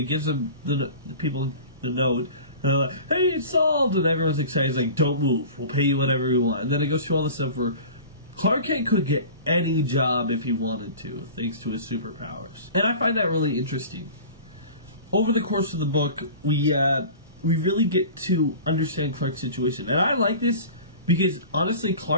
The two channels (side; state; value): both; inverted; correlation -0.39